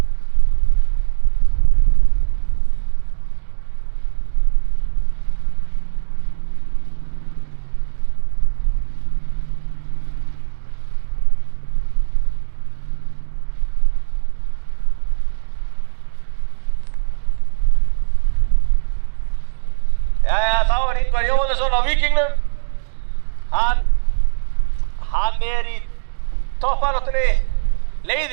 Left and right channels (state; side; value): silent; left; 64 dB below the other